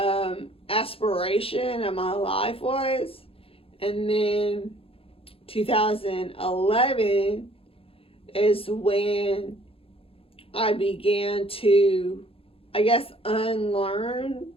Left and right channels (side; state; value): right; late; 0.27 ms